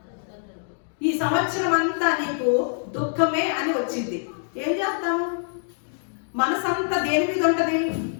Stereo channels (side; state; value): right; silent; digital silence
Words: ఈ సంవత్సరం అంతా నీకు దుఃఖమే అని వచ్చింది, ఏం చేస్తాము? మనసంతా దేని మీద ఉంటది?